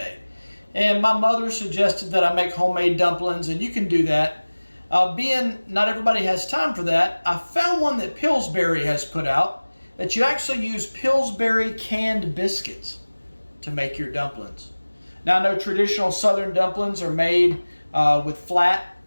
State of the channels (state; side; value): inverted; both; correlation -1.00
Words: And my mother suggested that I make homemade dumplings, and you can do that. Being not everybody has time for that, I found one that Pillsbury has put out that you actually use Pillsbury canned biscuits to make your dumplings. Now I know traditional southern dumplings are made with flat